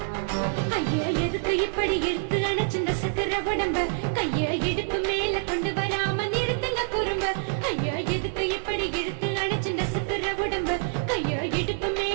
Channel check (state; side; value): silent; left; 61 dB below the other